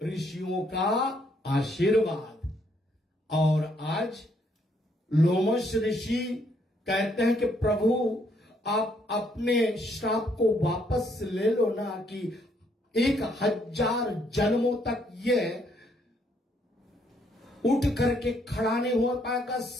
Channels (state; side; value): normal; both; correlation 0.70